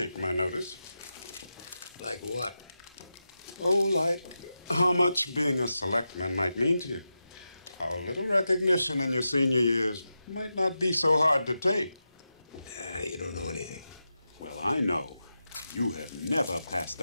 my notice. Like what? Oh, like how much being a selectman might mean to you. How a little recognition in your senior years might not be so hard to take. You don't know anything. Well, I know. You have never passed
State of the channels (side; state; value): both; inverted; correlation -0.90